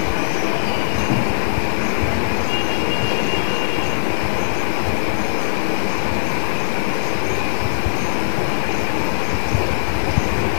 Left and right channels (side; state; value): right; silent; 60 dB below the other